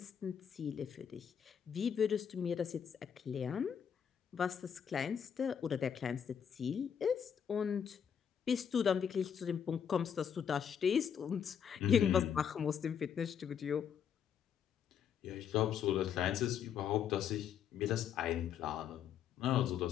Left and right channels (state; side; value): quieter; right; 8.0 dB